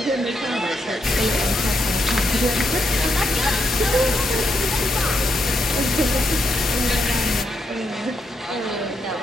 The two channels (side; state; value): both; normal; correlation 0.80